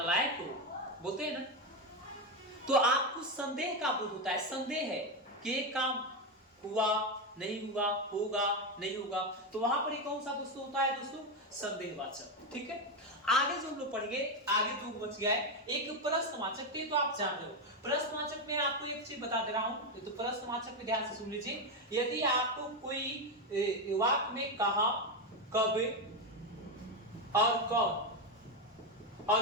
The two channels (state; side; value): normal; both; correlation 0.10